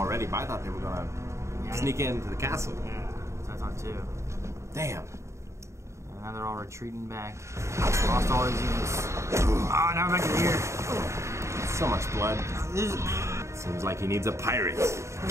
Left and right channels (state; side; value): late; left; 0.14 ms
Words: but I thought they were gonna sneak into the castle. Yeah, that's what I thought too. Damn. And now they're all retreating back. Lost all his units. Oh, now we're back to here. So much blood. This Seems like he needs a pirate.